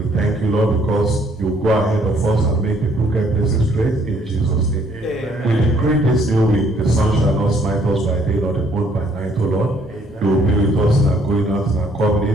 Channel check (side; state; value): both; normal; correlation 0.65